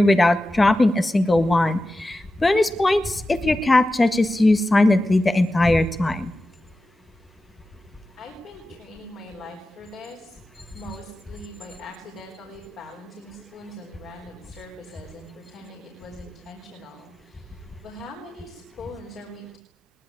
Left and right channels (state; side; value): normal; both; correlation 0.93